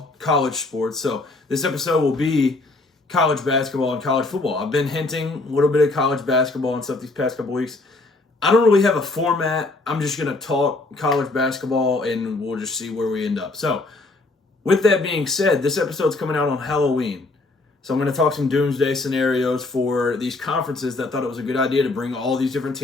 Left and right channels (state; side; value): quieter; right; 3.2 dB